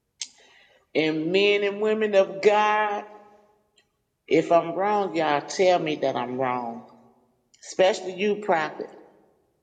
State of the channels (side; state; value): both; identical; correlation 1.00